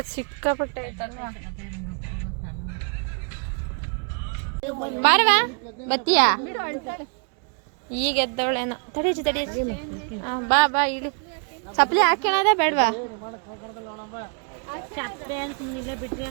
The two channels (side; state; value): left; quieter; 38.4 dB